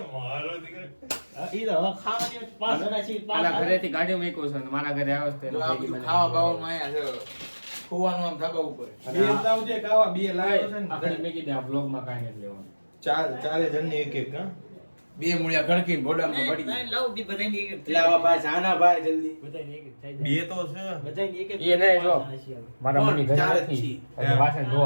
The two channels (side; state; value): both; inverted; correlation -1.00